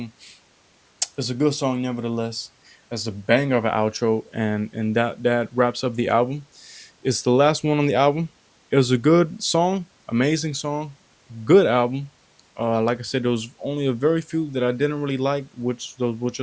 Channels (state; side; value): identical; both; correlation 1.00